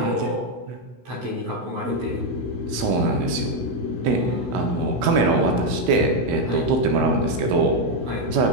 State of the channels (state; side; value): late; left; 16 ms